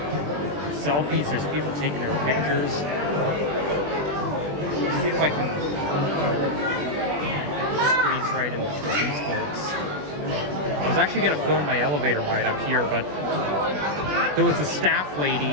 selfies, there's people taking their pictures. Let's see if I can squeeze right into these folks. I was actually going to film my elevator ride up here, but there was a staff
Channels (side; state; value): left; late; 20 ms